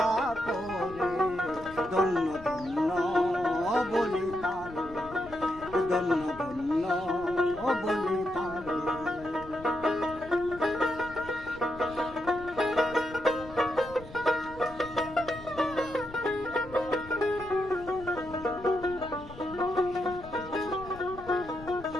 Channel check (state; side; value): noise; left; rumble, 17 dB below the sound